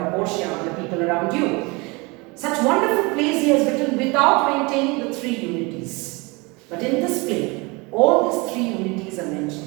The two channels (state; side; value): quieter; left; 26.6 dB